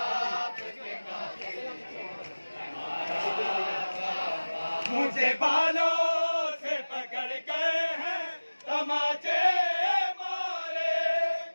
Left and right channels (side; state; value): both; inverted; correlation -1.00